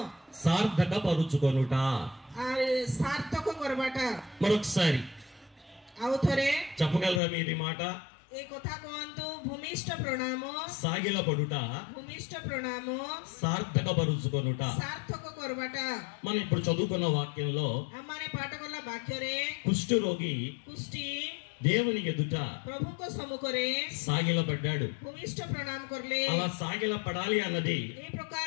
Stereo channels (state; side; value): drops out; right; at 7.2 s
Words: సార్థక పరుచుకొనుట, సార్థକ କରବାଟା. మరొకసారి ଆଉ ଥରେ చెప్పగలరా మీరు ఈ మాట? ఏ କଥା କୁହନ୍ତୁ. ଭୂମିଷ୍ଠ ପ୍ରଣାମ, సాగిల పడుట, ଭୂମିଷ୍ଠ ପ୍ରଣାମ, సార్థక పరుచుకొనుట. సార్థକ କରବାଟା. మనం ఇప్పుడు చదువుకున్న వాక్యంలో ଆମମାନେ ପାଠ କଲା ବାକ୍ୟରେ కుష్ఠరోగి କୁଷ୍ଠି దేవుని ఎదుట ప్రభుଙ୍କ ସମ୍ମୁଖରେ సాగిలపడ్డాడు. ଭୂମିଷ୍ଠ ପ୍ରଣାମ କରିଲେ. అలా సాగిల పడాలి అన్నది ఏ ప్రକାର